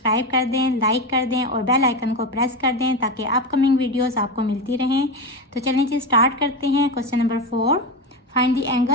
कर दें, लाइक कर दें और बेल आइकन को प्रेस कर दें ताकि अपकमिंग वीडियोस आपको मिलती रहें। तो चलिए जी स्टार्ट करते हैं। Question number 4, find the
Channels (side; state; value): both; normal; correlation 0.17